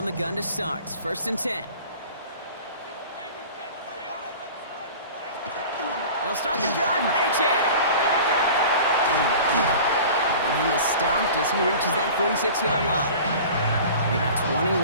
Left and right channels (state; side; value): inverted; both; correlation -0.40